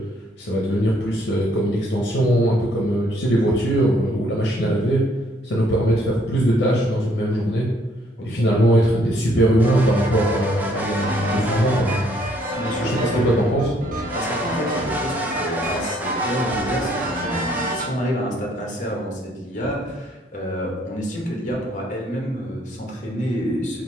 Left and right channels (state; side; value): normal; both; correlation 0.66